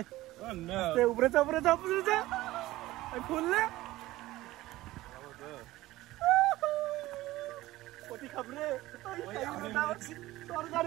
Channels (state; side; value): quieter; left; 17.3 dB